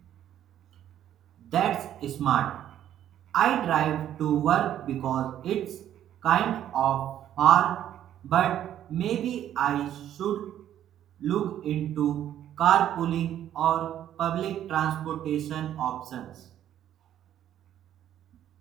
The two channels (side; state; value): left; quieter; 11.1 dB